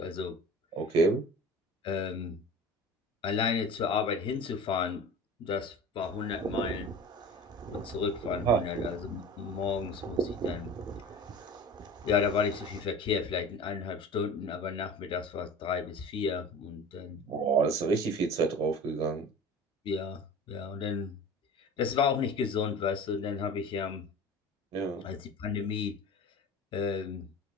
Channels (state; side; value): normal; both; correlation 0.37